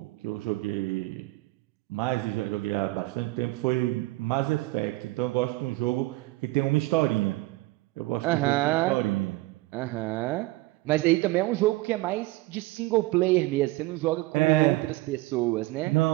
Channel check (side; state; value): left; quieter; 20.2 dB